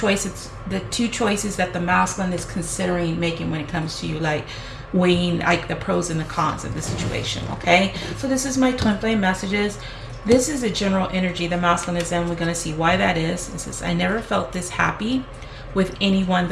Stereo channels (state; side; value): identical; both; correlation 1.00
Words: that the masculine is considering making when it comes to you, like weighing like the pros and the cons of the situation. Okay, so this is my twin flame messages. This is a general energy the masculine is in. We're going to see why that is. It says, I never felt this happy with anyone